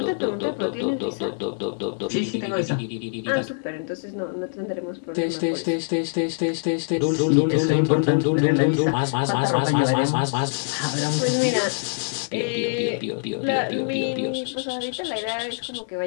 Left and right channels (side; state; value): right; silent; digital silence